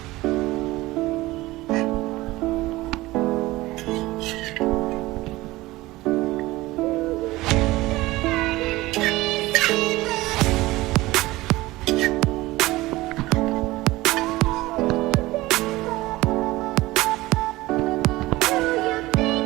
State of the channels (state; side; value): quieter; left; 19.0 dB